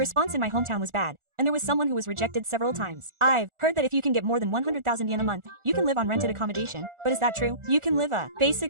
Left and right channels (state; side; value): late; left; 1.4 ms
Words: in my hometown was bad, and there was someone who was rejected several times. I've heard that if you can get more than 100,000 yen a month, you can live on rented accommodation. But is that true? You can live a